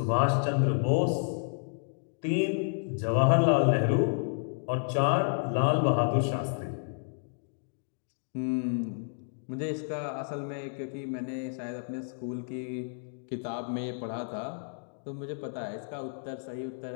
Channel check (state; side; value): silent; right; digital silence